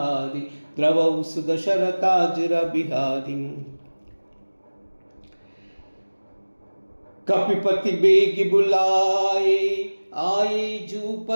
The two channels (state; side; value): inverted; both; correlation -1.00